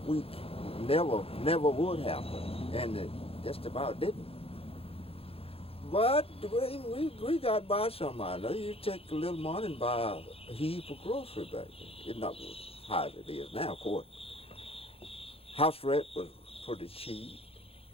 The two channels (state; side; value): late; right; 0.28 ms